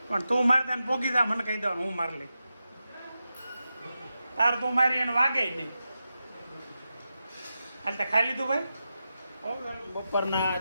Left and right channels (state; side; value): inverted; both; correlation -0.90